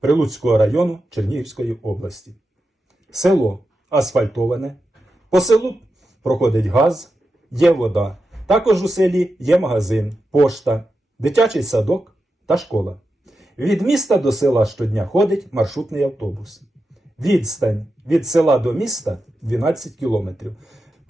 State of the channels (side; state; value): both; normal; correlation 0.89